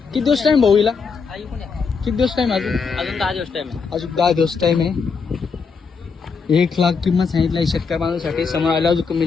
किती दिवस टाइम भाऊ हिला? आई पण आहे. किती दिवस टाइम अजून? अजून 10 दिवस टाइम आहे. अजून 10 दिवस टाइम आहे. 1,00,000 किंमत सांगितली आहे शेतकरी बांधवांसाठी. समोर आल्यावर अजून कमी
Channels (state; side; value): quieter; right; 5.3 dB